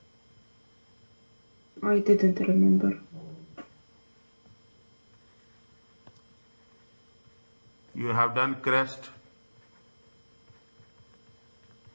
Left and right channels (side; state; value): both; inverted; correlation -1.00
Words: I didn't remember. You have done CREST,